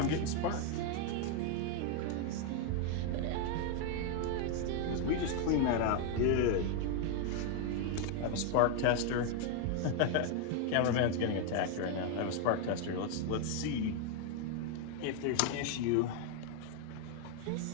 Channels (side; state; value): both; different; correlation 0.00